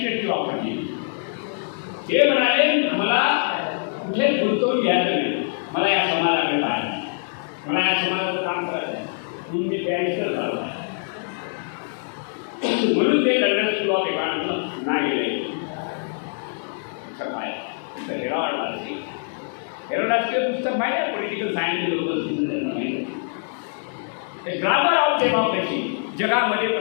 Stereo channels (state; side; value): silent; right; 63 dB below the other